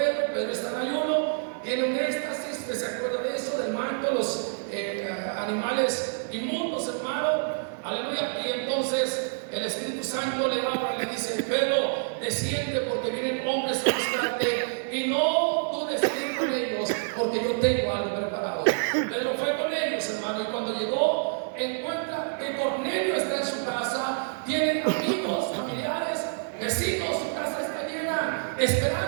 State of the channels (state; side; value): silent; left; 60 dB below the other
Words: Pedro está en ayuno, tiene un éxtasis, que se acuerda de eso, del manto, los animales inmundos, hermano. Aleluya. Y entonces el Espíritu Santo le habla y le dice: Pedro, desciende, porque vienen hombres a buscarte, y no dudes ir con ellos, porque yo tengo algo preparado. Pedro fue con ellos, hermano, y cuando llegó, encuentra que Cornelio está en su casa, tiene amigos, familiares, vecinos, su casa está llena,